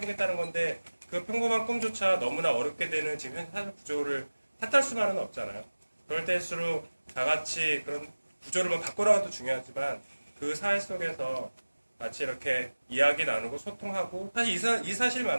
건데 그 평범한 꿈조차 너무나 어렵게 되는 지금 현 사회 구조를 탓할 수만은 없잖아요. 그럴 때일수록 다 같이 그런 구조를 바꿔나가도 중요하지만 그 사회 속에서 같이 이렇게 이야기 나누고 소통하고 사실 이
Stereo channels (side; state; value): both; inverted; correlation -1.00